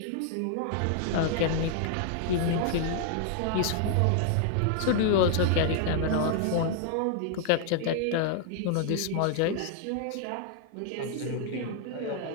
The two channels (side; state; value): both; different; correlation 0.00